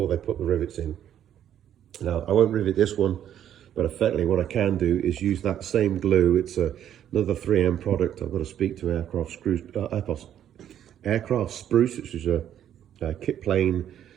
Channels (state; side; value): quieter; left; 10.4 dB